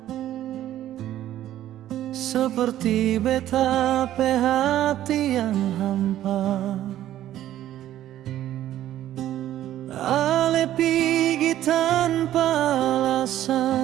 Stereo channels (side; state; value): left; quieter; 12.8 dB